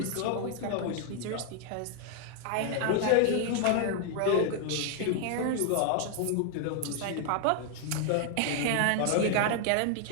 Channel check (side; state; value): both; different; correlation 0.00